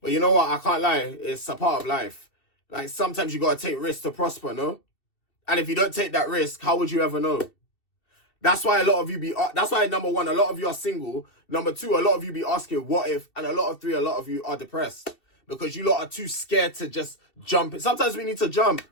you know what? I can't lie. It's a part of life. Like, sometimes you gotta take risks to prosper, no? And if you don't take that risk, how would you ever know? That's why a lot of you that's why, number one, a lot of you are single. Number two, a lot of you be asking what if. And a lot of you are depressed. Because you lot are too scared to just jump. Sometimes we need to jump.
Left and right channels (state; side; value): late; right; 2.7 ms